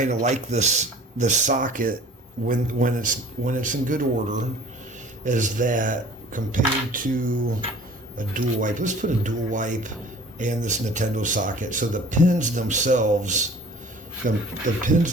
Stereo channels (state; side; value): normal; both; correlation 0.48